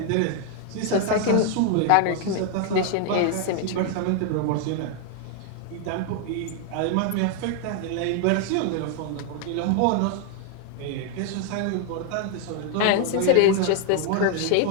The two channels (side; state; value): both; different; correlation 0.00